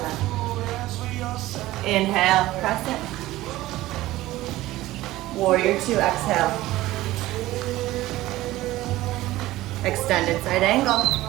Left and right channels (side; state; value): left; quieter; 16.7 dB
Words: Inhale, crescent. Warrior two, exhale. Extended side angle.